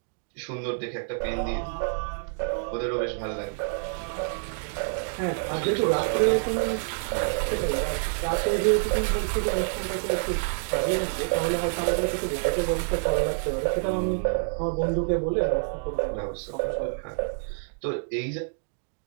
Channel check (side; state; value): left; silent; digital silence